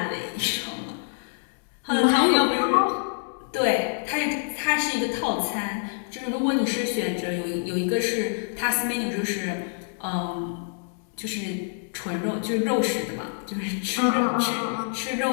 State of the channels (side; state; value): right; silent; 61 dB below the other